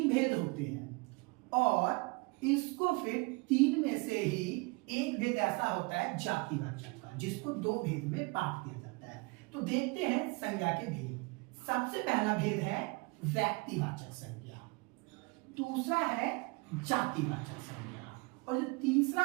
भेद होते हैं और इसको फिर 3 में से ही एक भेद ऐसा होता है जातिवाचक का, जिसको 2 भेद में बांट दिया जाता है। तो देखते हैं संज्ञा के भेद। सबसे पहला भेद है व्यक्तिवाचक संज्ञा, दूसरा है जातिवाचक संज्ञा, और जो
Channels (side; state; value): left; quieter; 27.5 dB